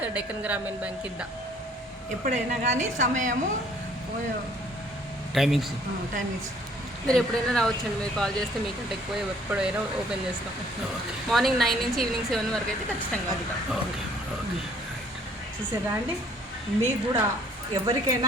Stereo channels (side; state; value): both; normal; correlation 0.60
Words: డెక్కన్ గ్రామీణ బ్యాంక్ కింద. ఎప్పుడైనా కానీ సమయము టైమింగ్స్ మీరు ఎప్పుడైనా రావచ్చండి. మీరు కాల్ చేస్తే మీకంటే ఎక్కువ ఎప్పుడైనా ఓపెన్ చేస్తాం. మార్నింగ్ 9 నుంచి ఈవినింగ్ 7 వరకు అయితే ఖచ్చితంగా ఉంటాం. చూసారా అండి, మీకు కూడా ఎవరికైనా